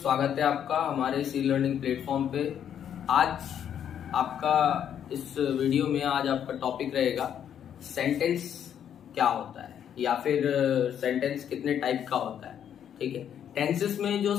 है आपका हमारे सी लर्निंग प्लेटफॉर्म पे। आज आपका इस वीडियो में आज आपका टॉपिक रहेगा सेंटेंस क्या होता है या फिर सेंटेंस कितने टाइप का होता है। ठीक है, टेंसेस में जो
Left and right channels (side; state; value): right; quieter; 9.2 dB